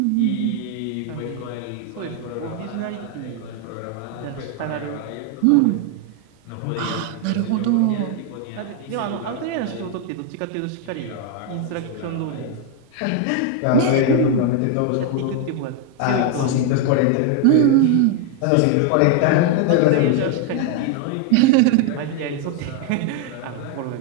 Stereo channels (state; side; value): different; both; correlation 0.01